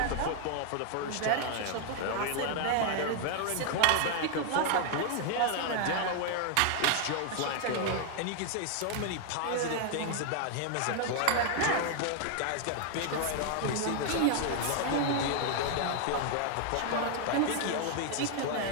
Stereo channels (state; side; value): different; both; correlation 0.00